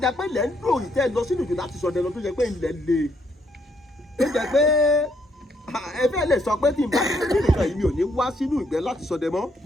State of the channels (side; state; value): both; normal; correlation 0.72